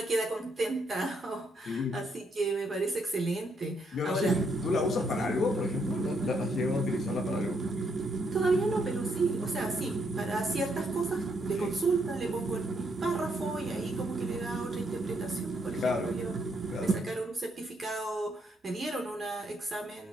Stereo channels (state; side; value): normal; both; correlation 0.75